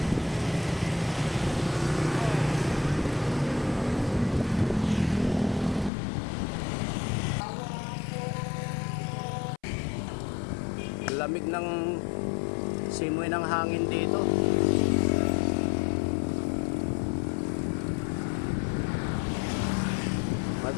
Lamig ng simoy ng hangin dito.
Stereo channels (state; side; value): drops out; right; at 5.9 s